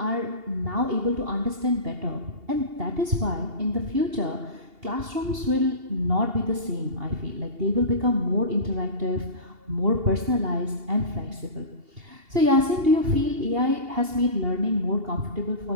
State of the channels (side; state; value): left; late; 2.8 ms